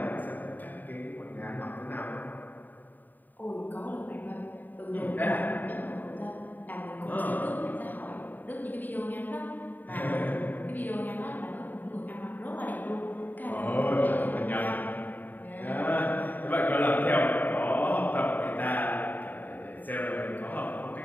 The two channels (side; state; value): right; late; 0.088 ms